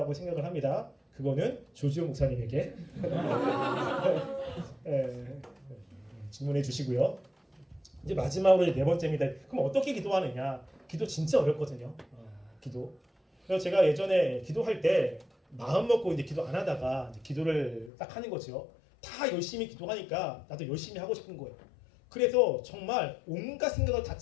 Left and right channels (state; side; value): drops out; right; at 17.9 s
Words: 생각을 합니다. 그거는 조지호 목사님에게 질문해 주시고요. 이제 마지막으로 네 번째입니다. 그럼 어떻게 기도하느냐? 기도 진짜 어렵거든요. 기도. 그래서 제가 예전에 기도할 때 마음 먹고 이제 기도 안 하다가 이제 기도를 딱 하는 거죠. 다 열심히 기도하니까 나도 열심히 하고 싶은 거예요. 그래서 정말 온갖 생각을 다